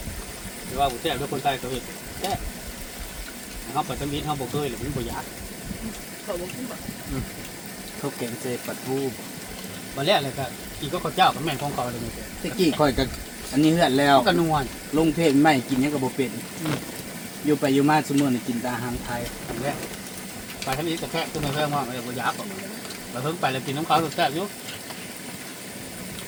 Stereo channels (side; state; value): both; identical; correlation 1.00